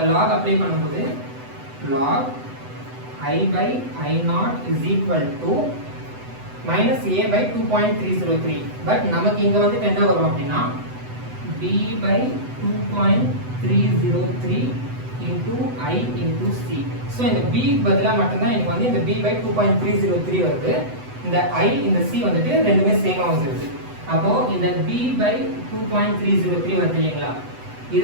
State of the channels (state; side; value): late; left; 8.0 ms